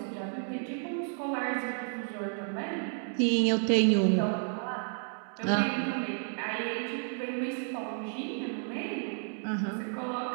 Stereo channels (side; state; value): left; silent; 57 dB below the other